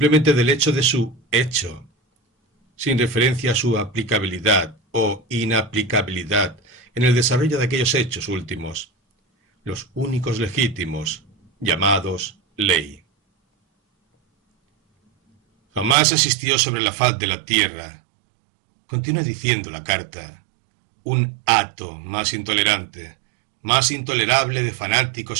del hecho de su hecho, sin referencia a su aplicabilidad o inaplicabilidad en el desarrollo de aquellos hechos últimos, los únicos legítimos, llamados ley. Jamás existió sobre la faz de la tierra, continúa diciendo la carta, un hato más intolerante, más intolerable de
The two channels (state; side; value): drops out; left; at 16.0 s